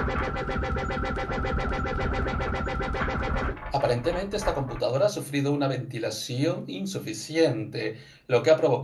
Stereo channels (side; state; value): both; identical; correlation 1.00